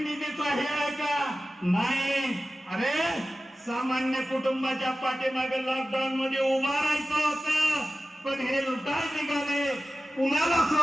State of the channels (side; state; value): both; normal; correlation 0.95